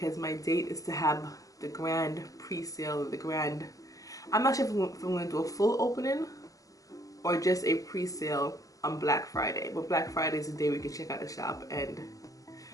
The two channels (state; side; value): late; right; 0.17 ms